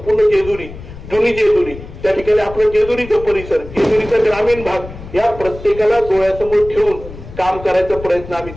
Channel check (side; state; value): left; noise; rumble, 14 dB below the sound